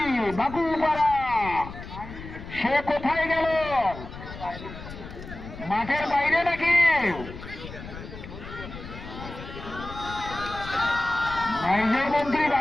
বাকুপাড়া সে কোথায় গেল? মাঠের বাইরে নাকি? নাইজের মন্ত্রী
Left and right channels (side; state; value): left; noise; rumble, 12 dB below the sound